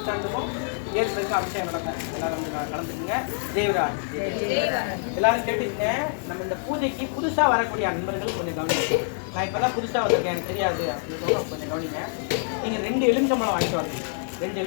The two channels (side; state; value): right; silent; 61 dB below the other